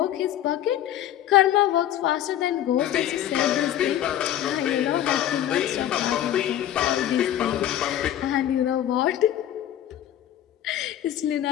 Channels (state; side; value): quieter; right; 11.8 dB